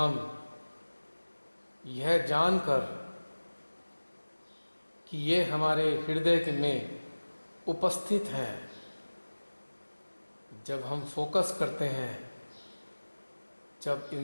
यह जानकर कि ये हमारे हृदय में उपस्थित हैं, जब हम फोकस करते हैं, जब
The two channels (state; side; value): inverted; both; correlation -1.00